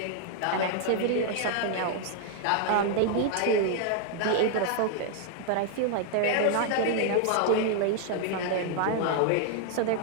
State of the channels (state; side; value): different; both; correlation 0.00